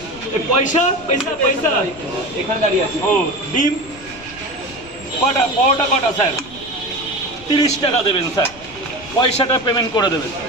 পয়সা পয়সা পয়সা এখানে দাঁড়িয়ে আছে। ও ডিম কটা, পরোটা কটা স্যার? 30 টাকা দেবেন স্যার, পয়সাটা পেমেন্ট করে দেবেন।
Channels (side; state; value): left; noise; rumble, 20 dB below the sound